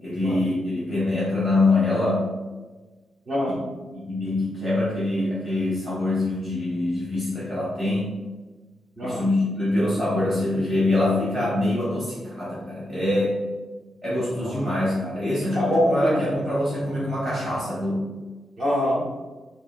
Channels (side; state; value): both; normal; correlation 0.83